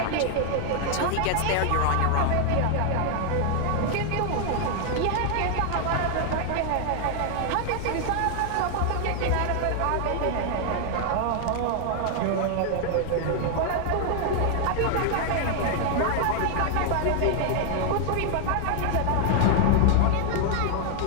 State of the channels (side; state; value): both; different; correlation 0.00